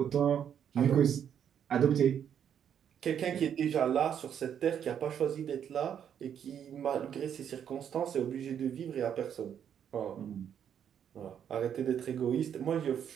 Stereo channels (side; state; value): left; quieter; 8.8 dB